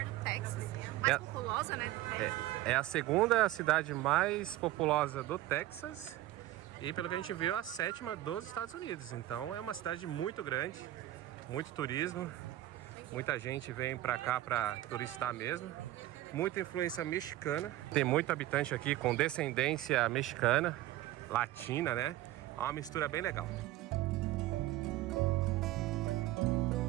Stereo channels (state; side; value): quieter; left; 15.3 dB